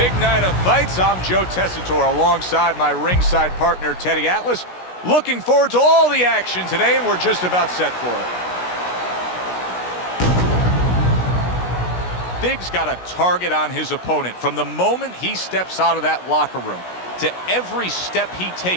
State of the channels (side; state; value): right; late; 16 ms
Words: night of fights. I'm Joe Tessitore alongside my ringside partner, Teddy Atlas. Looking forward to all the action today, and we're just about set for it. Big's got a target on his opponent. From the moment he steps out of that locker room to every step he